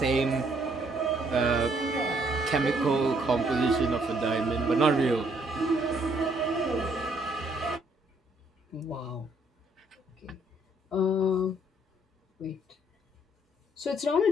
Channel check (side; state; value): both; normal; correlation 0.67